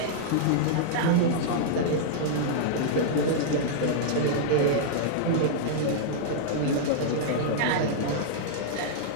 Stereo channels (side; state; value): both; different; correlation -0.01